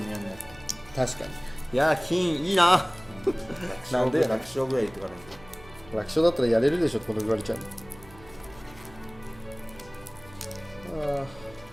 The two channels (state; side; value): noise; right; hum, 22 dB below the sound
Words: やんなって。確かに。いやー、金いいな。なんで楽勝ぐらい言ってからね。楽勝だったらやれるでしょってこと言われちゃうの。あ